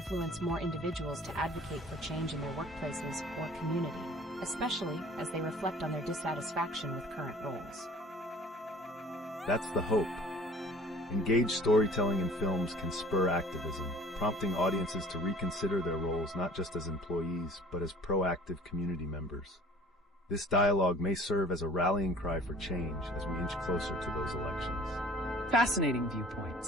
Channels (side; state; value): both; normal; correlation 0.49